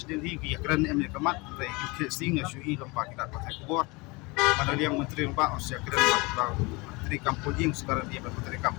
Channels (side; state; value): right; quieter; 25.6 dB